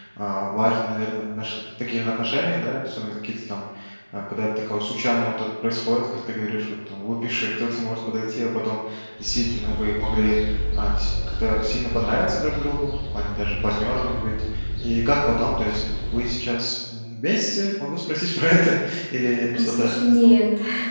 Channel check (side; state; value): both; inverted; correlation -1.00